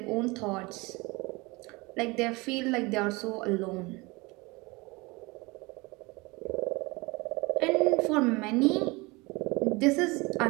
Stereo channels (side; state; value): left; quieter; 24.8 dB